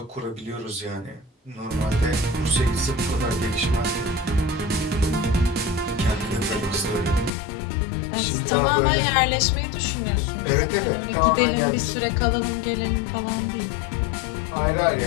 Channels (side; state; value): right; drops out; at 7.3 s